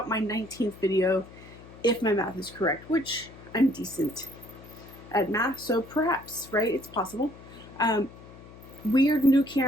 my 19th video, if my math is correct, which I'm decent at math, so perhaps, right, it's possible. Weird new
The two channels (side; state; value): left; noise; hum, 19 dB below the sound